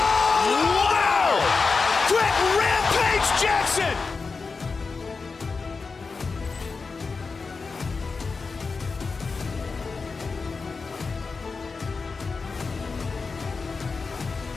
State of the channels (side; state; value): right; quieter; 4.5 dB